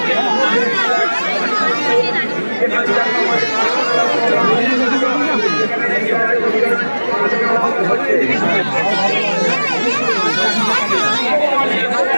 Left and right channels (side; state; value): both; inverted; correlation -1.00